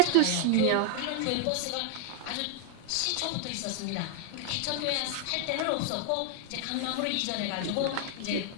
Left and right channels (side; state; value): both; different; correlation 0.00